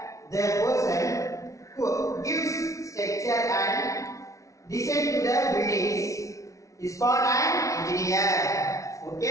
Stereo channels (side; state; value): right; late; 0.15 ms